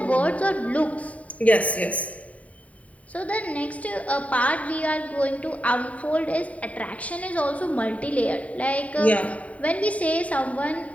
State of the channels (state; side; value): late; right; 0.068 ms